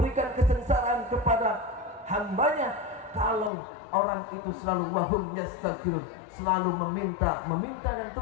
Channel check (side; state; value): right; drops out; at 3.5 s